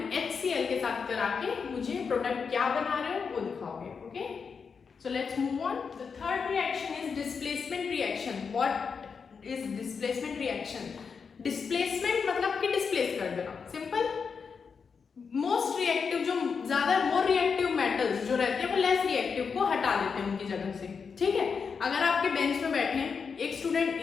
HCl के साथ करा के मुझे प्रोडक्ट क्या बना रहे हो वो दिखाओगे, okay. So let's move on. The third reaction is displacement reaction. What is displacement reaction? Displacement मतलब कि displace कर देना, simple. Most reactive जो ज़्यादा more reactive metals जो रहते हैं वो less reactive को हटा देते हैं उनकी जगह से, ठीक है। अगर आपके बेंच में बैठे हैं, एक स्टूडेंट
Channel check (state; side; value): quieter; right; 5.7 dB